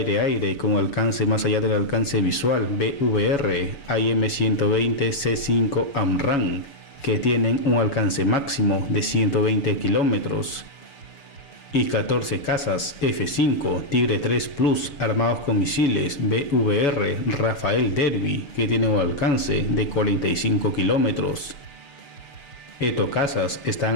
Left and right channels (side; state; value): right; late; 7.1 ms